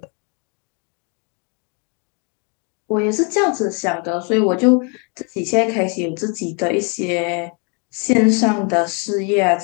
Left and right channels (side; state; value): right; quieter; 36.0 dB